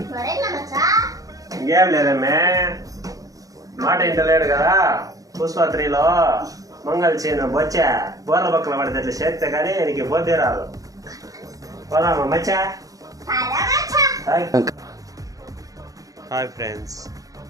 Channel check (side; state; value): left; late; 0.17 ms